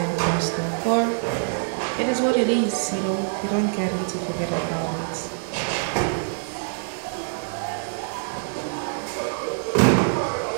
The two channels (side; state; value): left; silent; 57 dB below the other